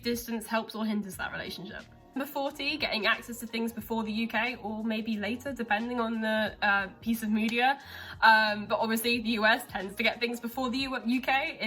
distance helps or hinders that relationship. Number 40, getting access to things before the UK, or maybe later, depending on the piece of media. But obviously the US tends to get things before the UK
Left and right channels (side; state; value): both; identical; correlation 1.00